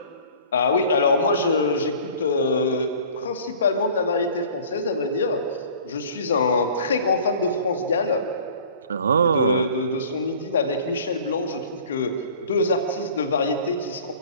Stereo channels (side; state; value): both; inverted; correlation -0.47